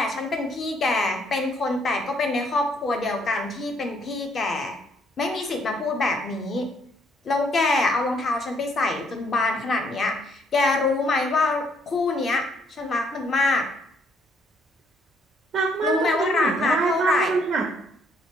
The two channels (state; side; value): normal; both; correlation 0.68